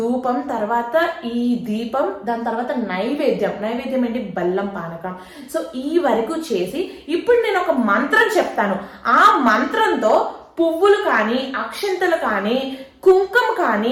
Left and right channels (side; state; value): both; identical; correlation 1.00